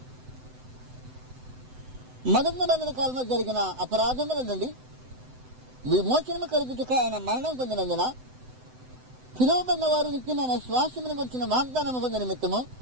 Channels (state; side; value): late; left; 7.9 ms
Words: మొదటి నిబంధన కాలంలో జరిగిన అపరాధముల నుండి విమోచనము కలుగుటక ఆయన మరణం పొందినందున పిలువబడిన వారు నిత్యమైన శ్వాసమును గురించిన వాగ్దానము పొందిన నిమిత్తము